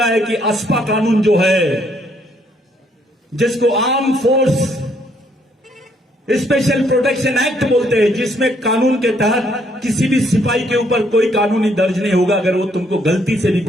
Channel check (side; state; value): both; normal; correlation 0.69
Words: है कि अस्पा कानून जो है, जिसको arm force special protection act बोलते हैं, जिसमें कानून के तहत किसी भी सिपाही के ऊपर कोई कानूनी दर्ज नहीं होगा। अगर वो तुमको गलती से भी